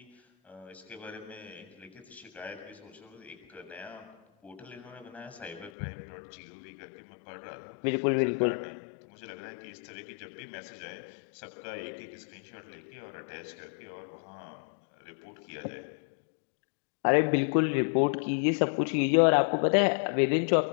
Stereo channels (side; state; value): right; drops out; at 5.7 s